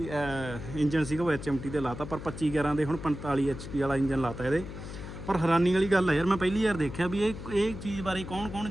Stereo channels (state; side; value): noise; left; hum, 10 dB below the sound